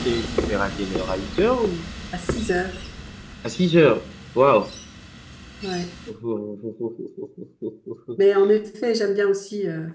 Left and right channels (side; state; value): both; identical; correlation 1.00